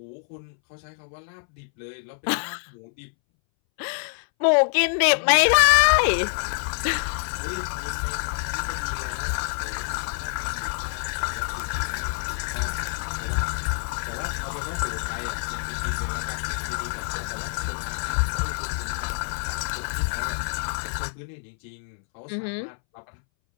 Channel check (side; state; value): right; silent; 61 dB below the other